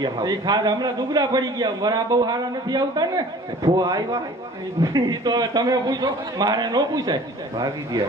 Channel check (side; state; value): both; normal; correlation 0.47